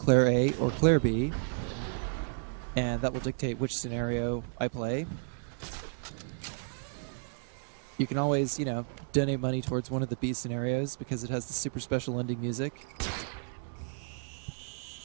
A, or Claire B, and that will dictate which scenario I play. You can always, you know, donate money towards one of the B scenarios because it has the super special ending music.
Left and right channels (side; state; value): left; silent; digital silence